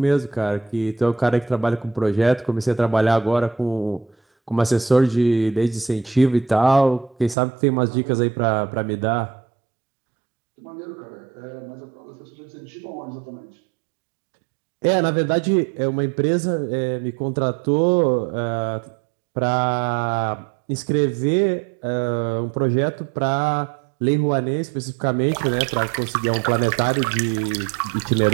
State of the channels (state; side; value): drops out; left; at 7.4 s